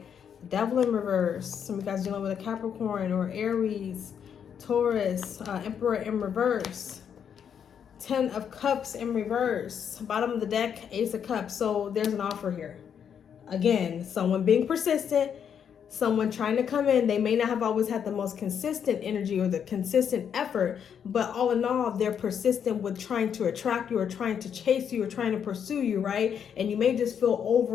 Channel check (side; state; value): right; quieter; 8.0 dB